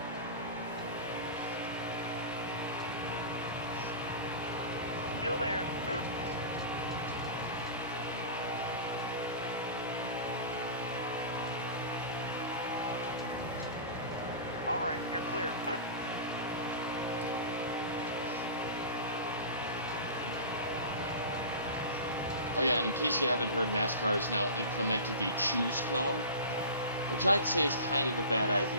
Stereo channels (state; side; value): inverted; both; correlation -0.33